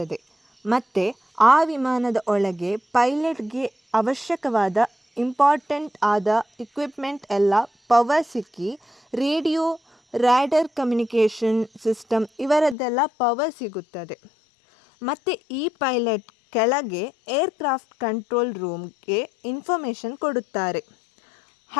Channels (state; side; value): drops out; right; at 12.8 s